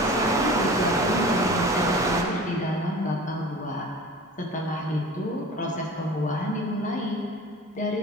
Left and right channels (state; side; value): normal; both; correlation 0.39